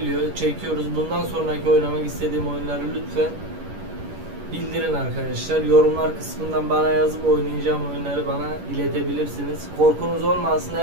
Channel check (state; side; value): late; left; 11 ms